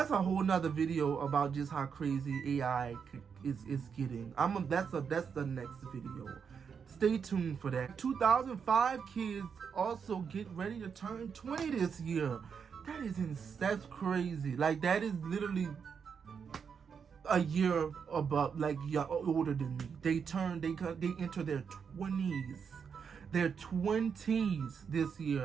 a whole nother video about just how crazy AI is getting. That's the next video. Stay tuned for that. 2005 kids also get ready to turn 20 this year. That's crazy. Like, that is literally a year above, older than me. They enter their 20s. Their 20s this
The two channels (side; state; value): left; quieter; 6.6 dB